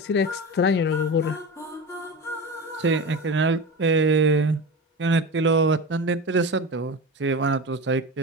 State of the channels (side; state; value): both; normal; correlation 0.26